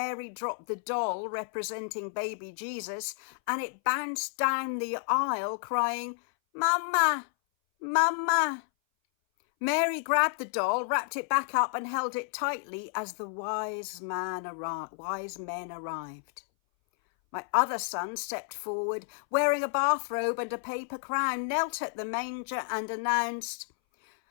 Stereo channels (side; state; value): right; silent; 57 dB below the other